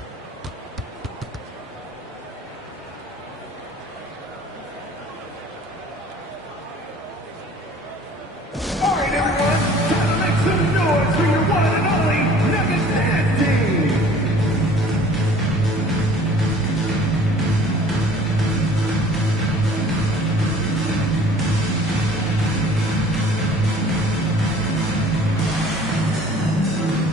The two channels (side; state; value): both; normal; correlation 0.50